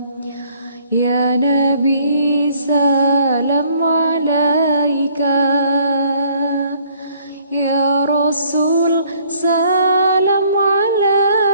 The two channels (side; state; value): both; inverted; correlation -0.62